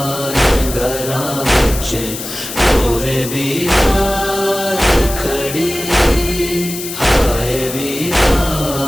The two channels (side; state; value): left; noise; hiss, 8 dB below the sound